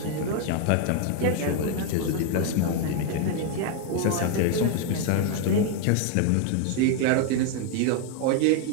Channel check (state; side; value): different; both; correlation 0.01